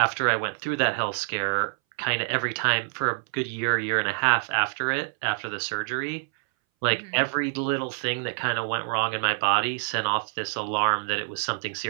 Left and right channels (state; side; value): silent; left; 60 dB below the other